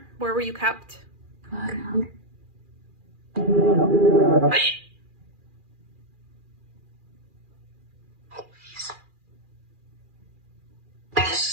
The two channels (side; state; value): left; late; 2.4 ms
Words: Where were you kept?